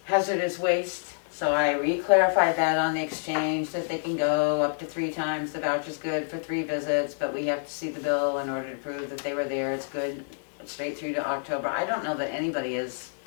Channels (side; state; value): right; silent; 60 dB below the other